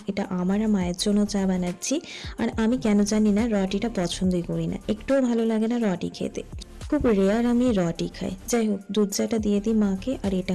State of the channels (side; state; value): both; identical; correlation 1.00